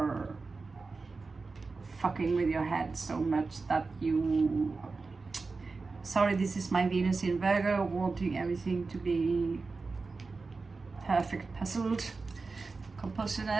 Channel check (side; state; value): left; quieter; 4.1 dB